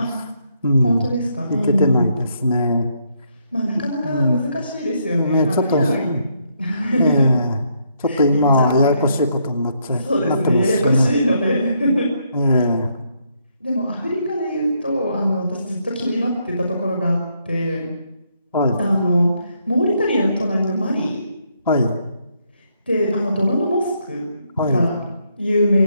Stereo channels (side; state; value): both; inverted; correlation -0.74